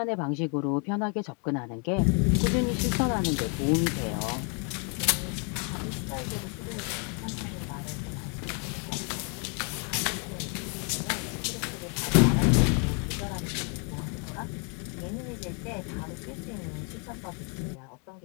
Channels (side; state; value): right; quieter; 37.6 dB